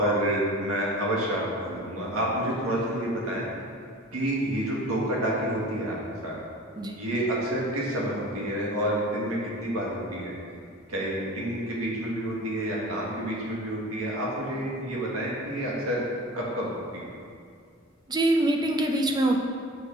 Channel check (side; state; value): both; normal; correlation 0.38